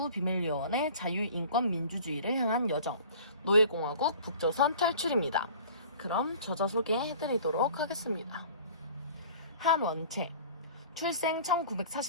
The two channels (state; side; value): inverted; both; correlation -0.45